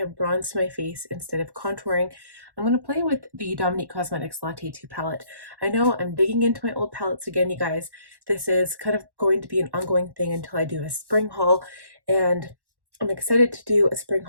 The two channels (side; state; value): left; late; 1.1 ms